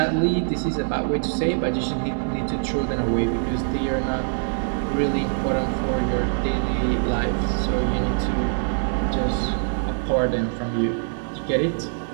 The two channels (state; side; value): silent; left; digital silence